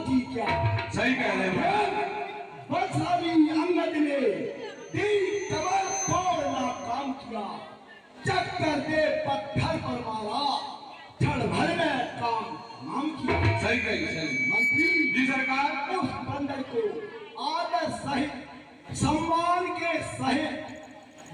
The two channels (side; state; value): both; identical; correlation 1.00